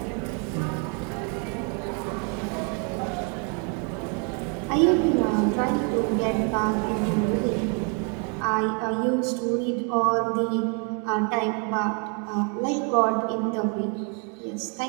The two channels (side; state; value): left; quieter; 37.2 dB